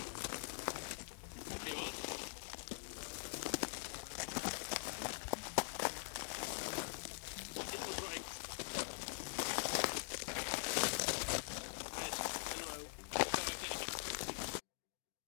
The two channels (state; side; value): silent; right; digital silence